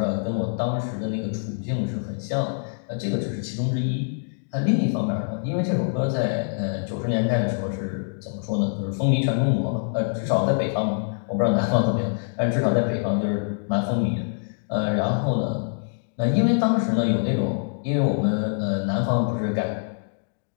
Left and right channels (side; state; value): right; silent; digital silence